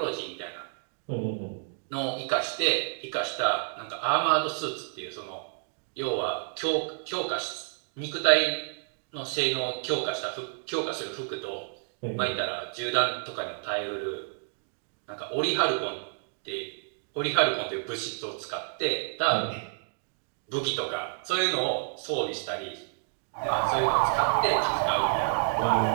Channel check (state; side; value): silent; left; 58 dB below the other